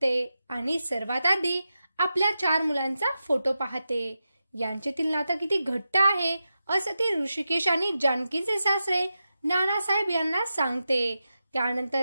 आणि सर्वात आधी आपल्या 4 मुलांचा फोटो पाहते। यांच्यातील नातं किती घट्ट आहे असं ती ऋषिकेश आणि जानकीचे सासरे नानासाहेब यांना सांगते। त्यानंतर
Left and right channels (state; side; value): inverted; both; correlation -0.90